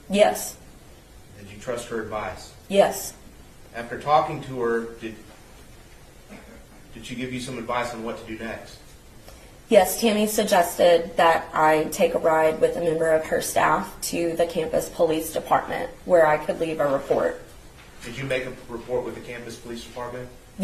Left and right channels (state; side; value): identical; both; correlation 1.00